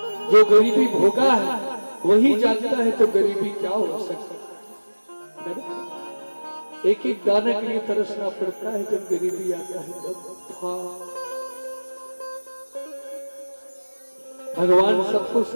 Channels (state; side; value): inverted; both; correlation -1.00